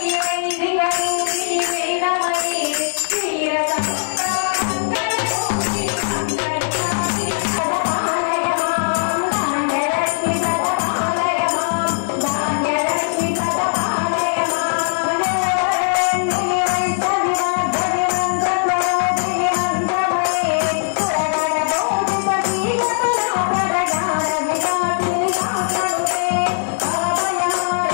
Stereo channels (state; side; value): silent; right; digital silence